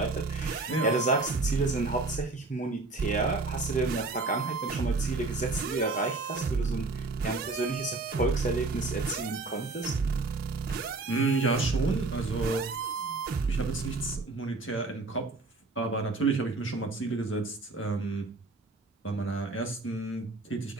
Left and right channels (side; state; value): left; quieter; 3.5 dB